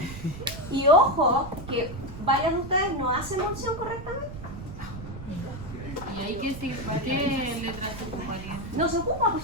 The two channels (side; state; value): right; noise; rumble, 11 dB below the sound